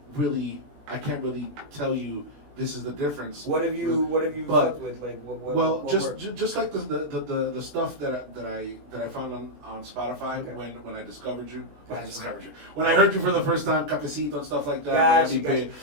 really tell you this is the difference. What have you But- fucked with? Like what? Well, what just worked? just like the stuff that I found on Spotify Okay. when I discovered you, Gotcha. when I heard you for the first time, Cafecito and stuff like that. Gotcha, Miami gotcha. Bay.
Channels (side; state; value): left; late; 21 ms